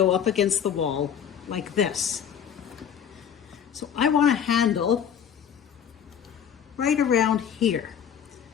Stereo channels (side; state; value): right; quieter; 8.4 dB